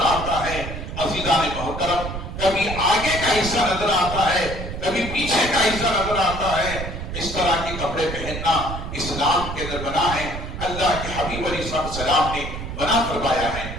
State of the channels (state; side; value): noise; right; rumble, 7 dB below the sound